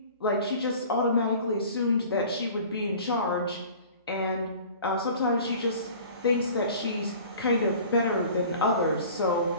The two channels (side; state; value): both; inverted; correlation -0.45